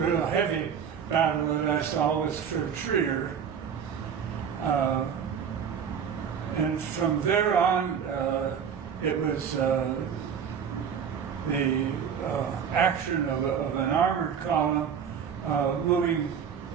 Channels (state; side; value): quieter; left; 7.6 dB